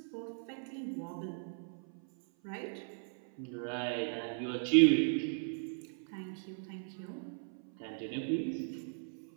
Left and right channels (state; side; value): silent; left; 53 dB below the other